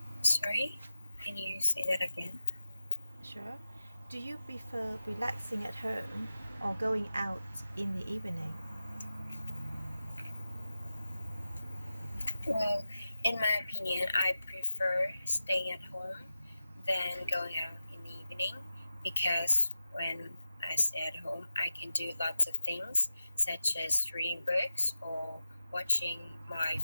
Sorry, can you say that again? Sure. Do you prefer relaxing at home or going out in the evening? Well, in my opinion, I prefer staying at home than going out in the evening because when I stay at home, I can do lots of things such as reading books or watching my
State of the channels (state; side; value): inverted; both; correlation -0.93